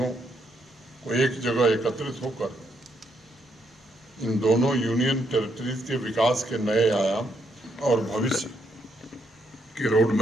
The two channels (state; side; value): normal; both; correlation 0.76